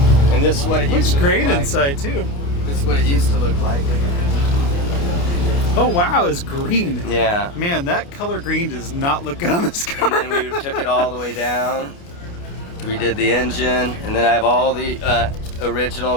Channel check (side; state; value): right; late; 29 ms